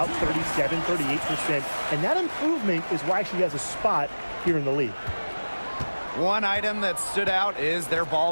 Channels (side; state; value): both; inverted; correlation -1.00